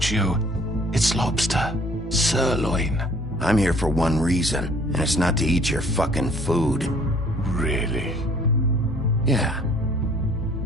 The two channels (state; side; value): normal; both; correlation 0.56